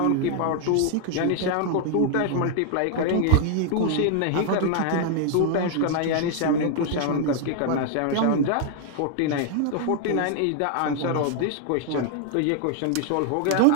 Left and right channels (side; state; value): both; different; correlation 0.00